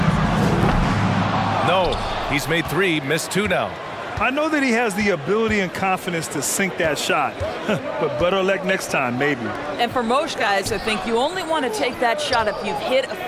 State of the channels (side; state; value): both; identical; correlation 1.00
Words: No, he's made 3, missed 2 now. I know that he has the ability and confidence to sink that shot, but better luck next time, maybe. And for most guys, I think you only want to take that shot if you've hit a